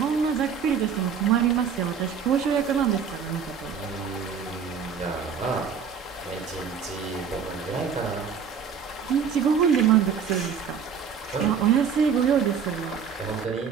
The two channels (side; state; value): left; quieter; 6.8 dB